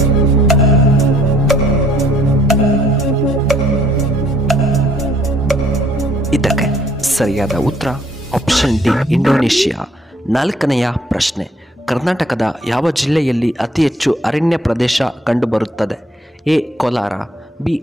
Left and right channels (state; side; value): normal; both; correlation 0.62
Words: ಇದಕ್ಕೆ ಸರಿಯಾದ ಉತ್ತರ ಆಪ್ಷನ್ ಡಿ ಇಂಡೋನೇಷಿಯಾ. ನಾಲ್ಕನೆಯ ಪ್ರಶ್ನೆ, ಕರ್ನಾಟಕದ ಯಾವ ಜಿಲ್ಲೆಯಲ್ಲಿ ಅತಿ ಹೆಚ್ಚು ಅರಣ್ಯ ಪ್ರದೇಶ ಕಂಡುಬರುತ್ತದೆ? A Kolar, B